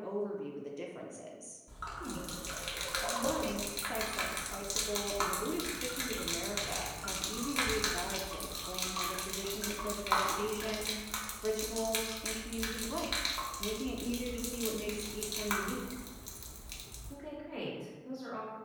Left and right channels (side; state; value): both; identical; correlation 1.00